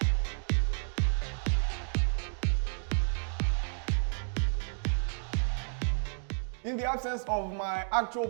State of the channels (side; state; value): left; silent; 57 dB below the other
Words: In the absence of my actual